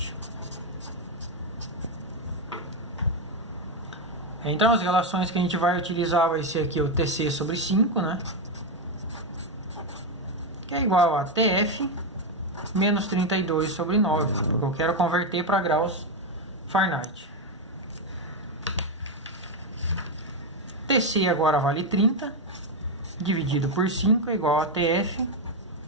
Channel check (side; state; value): both; normal; correlation 0.06